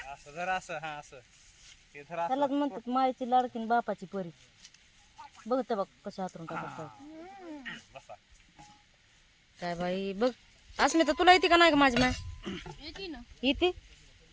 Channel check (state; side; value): identical; both; correlation 1.00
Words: त्यालाच म्हणतात मायची लाडकीन बापाची परी. बघते बघ कशा हातरून टाकत. काय बाई बघ. अस्मिता तुला येते का नाही ग माझी माय? येते